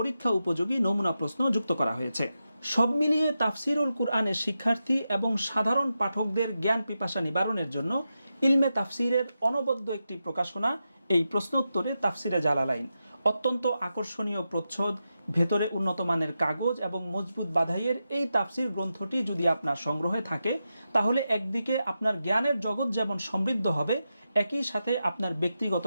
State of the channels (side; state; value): both; inverted; correlation -0.89